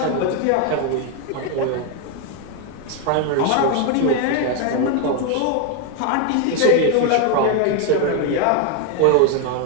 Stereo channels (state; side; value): different; both; correlation 0.01